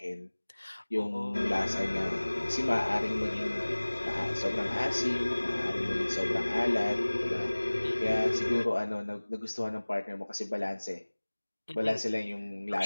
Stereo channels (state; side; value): inverted; both; correlation -1.00